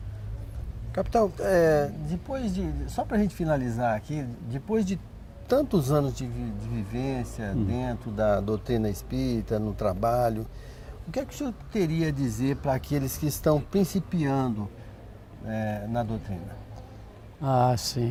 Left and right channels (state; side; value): identical; both; correlation 1.00